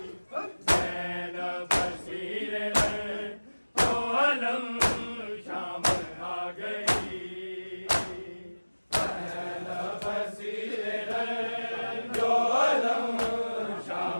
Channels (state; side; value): inverted; both; correlation -1.00